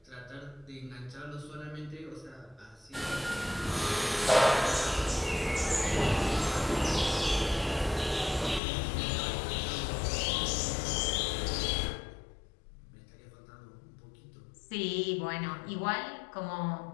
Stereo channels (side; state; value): right; drops out; at 8.6 s